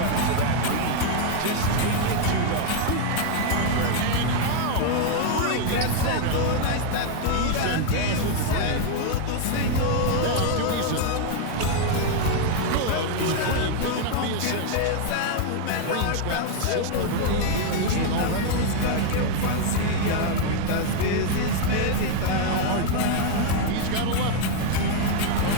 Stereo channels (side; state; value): both; different; correlation 0.00